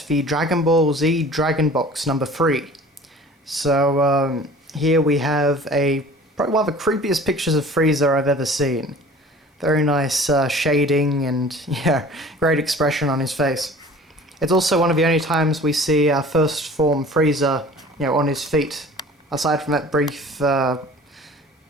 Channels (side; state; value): both; normal; correlation 0.45